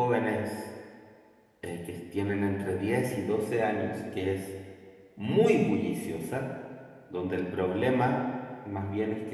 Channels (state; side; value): identical; both; correlation 1.00